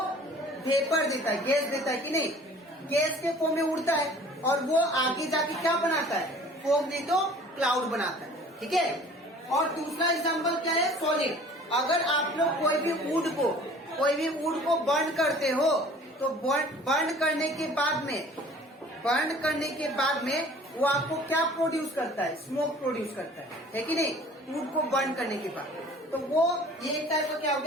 वेपर देता है, गैस देता है कि नहीं, गैस के फॉर्म में उड़ता है और वो आगे जाके क्या बनाता है, फॉग नहीं तो क्लाउड बनाता है। ठीक है, और दूसरा एग्जाम्पल क्या है, सॉलिड। अगर आप लोग कोई भी वुड को बर्न करते हो तो बर्न करने के बाद में वो आपको क्या प्रोड्यूस करता है, स्मोक प्रोड्यूस करता है कि नहीं, वुड को बर्न करने के बाद। तो वो ये एक टाइप का क्या हो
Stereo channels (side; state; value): both; normal; correlation 0.49